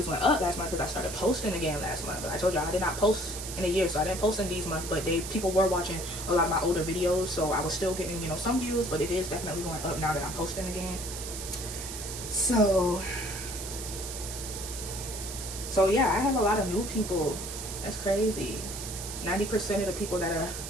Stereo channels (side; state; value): right; noise; hiss, 8 dB below the sound